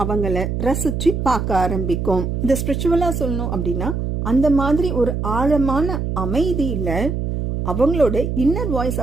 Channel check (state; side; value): noise; right; hum, 2 dB below the sound